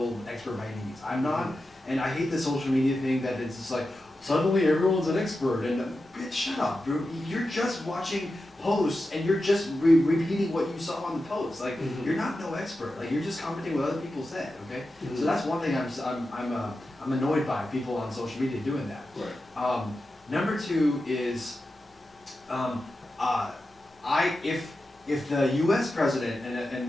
expert by any means. I'm not, and I hate the social media thing that it's just like suddenly everyone's an expert and bitch, shut up, bro. You're just watching posts and you're just repeating what you saw on the post. Like you're not no expert. Like you're just commenting what other people said. Okay, so that's one thing I'm annoyed by people on social media doing that. Right. Number two is, if the U.S. president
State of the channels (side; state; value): both; normal; correlation 0.91